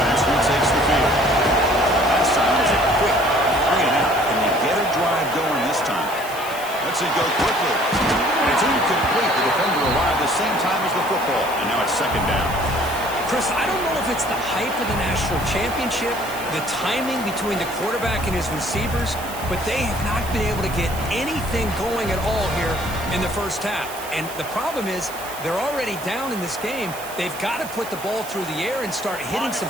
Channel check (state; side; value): noise; right; hiss, 14 dB below the sound